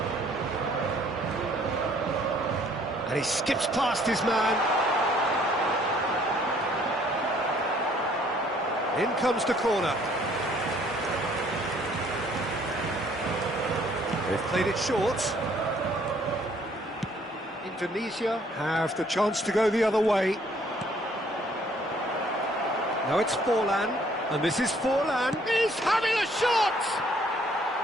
And he skips past his man. In comes the corner. They've played it short. Indonesia have the chance to go the other way. Now it's Forlan, and this is Forlan. He's having a shot!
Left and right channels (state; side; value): normal; both; correlation 0.61